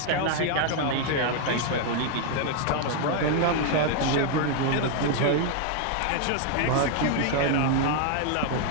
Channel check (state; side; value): different; both; correlation 0.00